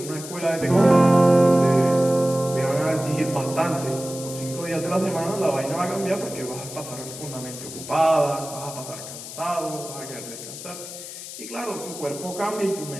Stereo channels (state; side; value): noise; left; hiss, 11 dB below the sound